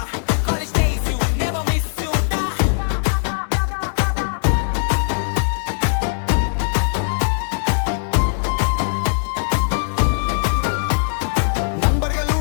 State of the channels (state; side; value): silent; right; 66 dB below the other